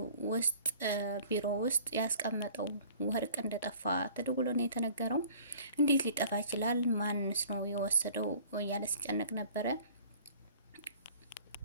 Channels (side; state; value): both; inverted; correlation -0.50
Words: ውስጥ ቢሮ ውስጥ ያስቀመጠው ወርቅ እንደጠፋ ተደውሎ ነው የተነገረው። እንዴት ሊጠፋ ይችላል? ማንስ ነው የወሰደው? እያለ ሲጨነቅ ነበረ።